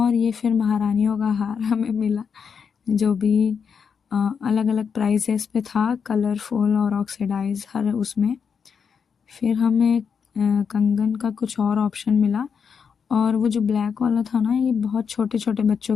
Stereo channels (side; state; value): right; quieter; 6.5 dB